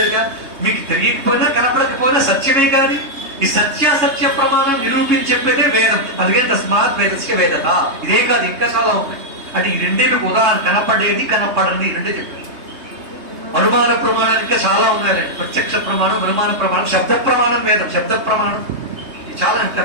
మీకు తెలియకపోయినా కనపడకపోయినా సత్యమే కాదు. ఈ సత్యాసత్య ప్రమాణం నిరూపించి చెప్పేదే వేదం. అందుకే తస్మాత్ వేదస్య వేదత. ఇదే కాదు, ఇంకా చాలా ఉన్నాయి. అంటే ఈ రెండే మీకు ఉదాహరణ. కనపడేది, కనపడని రెండే చెప్పారు. అనుమాన ప్రమాణాలు ఇంకా చాలా ఉన్నాయి. ప్రత్యక్ష ప్రమాణం, అనుమాన ప్రమాణం, శబ్ద ప్రమాణం, వేదం శబ్ద ప్రమాణం. చాలా ఇంకా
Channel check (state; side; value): late; left; 3.2 ms